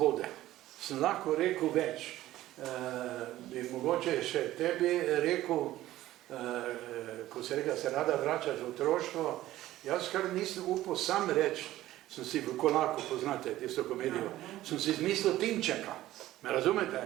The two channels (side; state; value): left; quieter; 15.0 dB